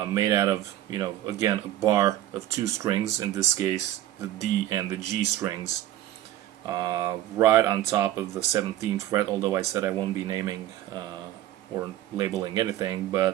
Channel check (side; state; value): left; quieter; 13.3 dB